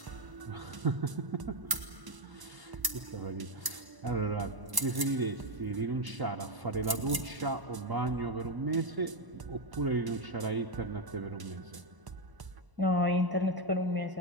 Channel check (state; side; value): late; left; 1.0 ms